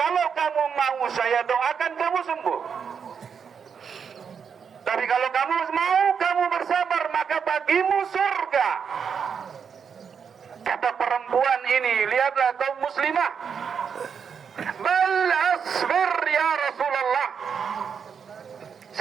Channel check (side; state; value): left; quieter; 6.8 dB